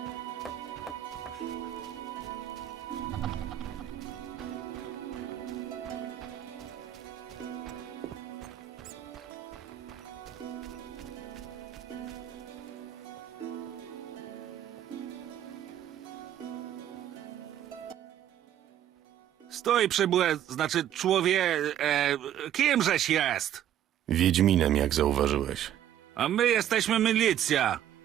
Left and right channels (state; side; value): quieter; left; 11.2 dB